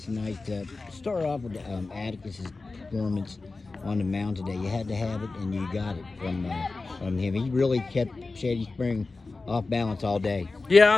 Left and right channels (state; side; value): quieter; right; 3.7 dB